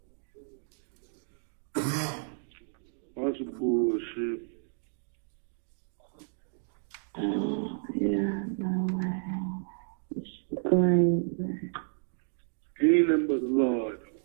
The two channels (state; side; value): silent; left; digital silence